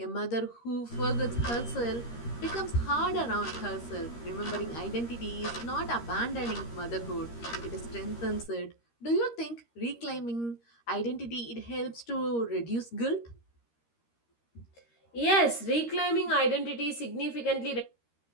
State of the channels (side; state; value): right; late; 13 ms